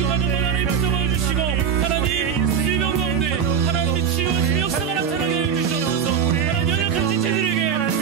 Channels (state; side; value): quieter; left; 7.4 dB